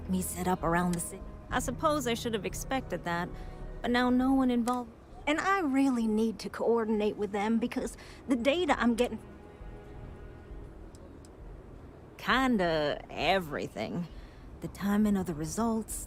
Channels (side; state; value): both; identical; correlation 1.00